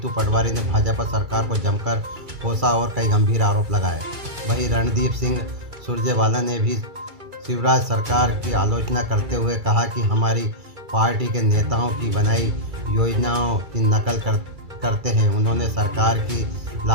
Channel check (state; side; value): late; left; 2.3 ms